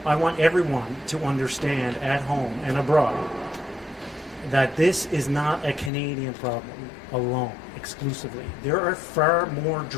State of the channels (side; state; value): right; drops out; at 5.9 s